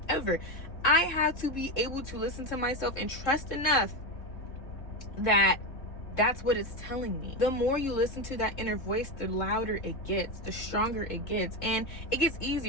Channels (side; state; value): right; late; 3.7 ms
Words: I have to be able to listen to myself and trust enough that that's what it's telling me. The more you listen to that inner voice, the louder it gets, the stronger it gets, and it gets